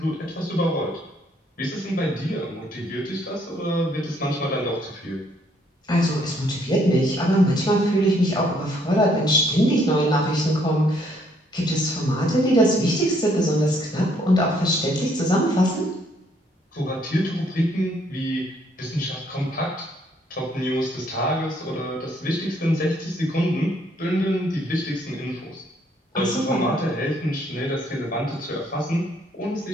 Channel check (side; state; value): both; normal; correlation 0.67